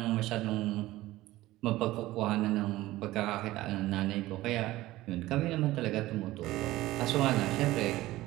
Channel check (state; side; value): quieter; left; 17.1 dB